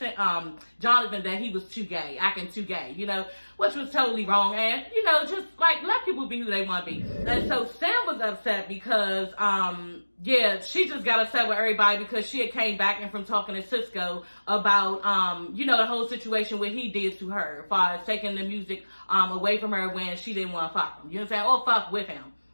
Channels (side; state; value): both; inverted; correlation -1.00